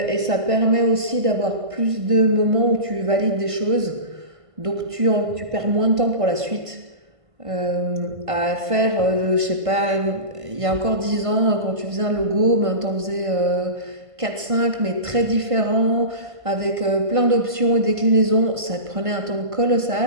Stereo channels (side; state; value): left; late; 1.5 ms